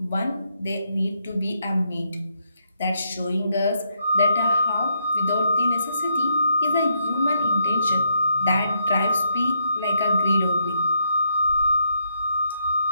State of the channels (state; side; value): inverted; both; correlation -0.77